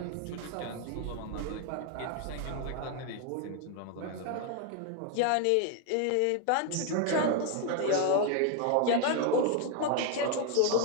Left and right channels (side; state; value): both; different; correlation 0.00